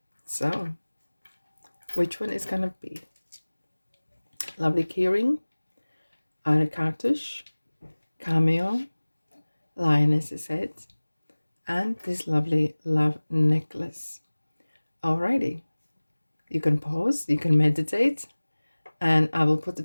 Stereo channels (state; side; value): inverted; both; correlation -1.00